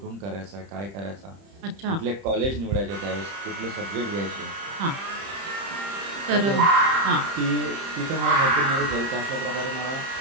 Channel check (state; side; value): late; left; 30 ms